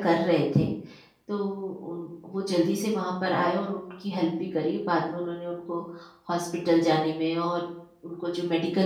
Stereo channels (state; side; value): identical; both; correlation 1.00